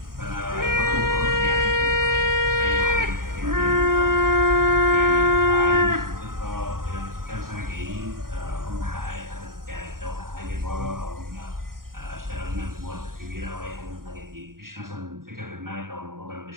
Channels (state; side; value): late; left; 0.91 ms